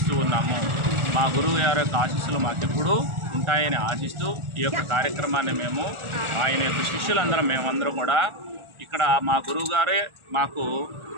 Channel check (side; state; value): left; late; 1.4 ms